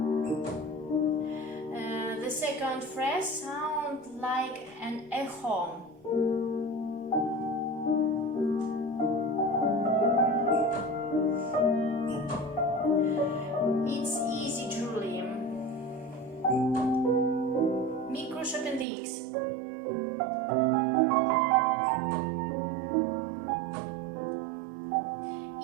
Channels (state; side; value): drops out; left; at 18.9 s